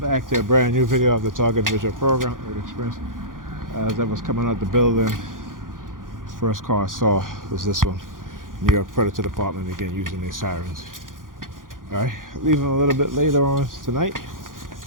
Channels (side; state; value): left; late; 0.90 ms